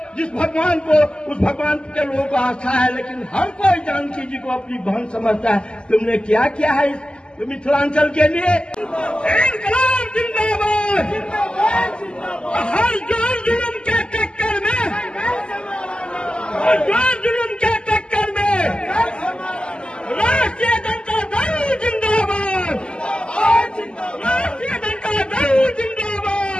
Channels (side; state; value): right; late; 0.050 ms